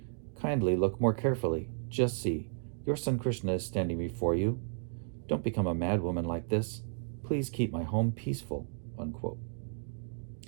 Kindly look more carefully. Just see, your son Krishna is standing before you. Don't become a madwoman like this. Please keep my home peaceful," unquote.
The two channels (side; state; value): left; silent; digital silence